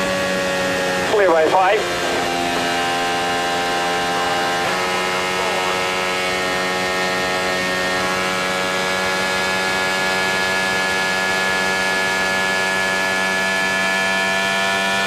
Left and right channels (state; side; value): identical; both; correlation 1.00